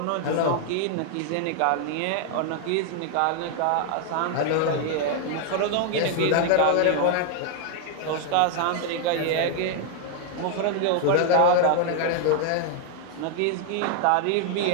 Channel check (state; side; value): different; both; correlation 0.00